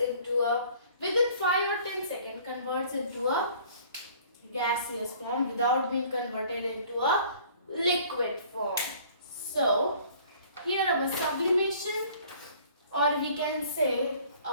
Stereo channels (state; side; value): inverted; both; correlation -0.53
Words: a, within 5 or 10 seconds, converts into a gaseous form without being converted into a liquid form. So here our sublimation, or we can say